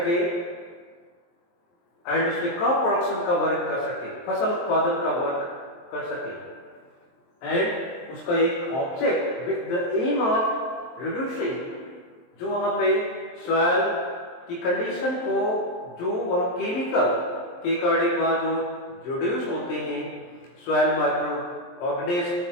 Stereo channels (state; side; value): late; right; 23 ms